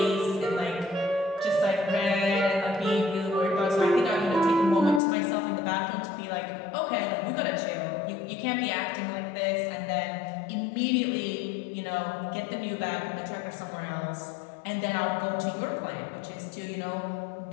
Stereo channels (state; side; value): drops out; right; at 5.0 s